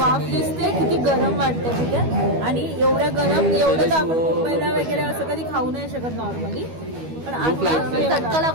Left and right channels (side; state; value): left; late; 12 ms